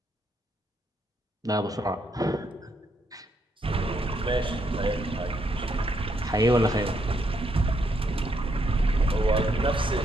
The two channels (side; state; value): both; normal; correlation 0.76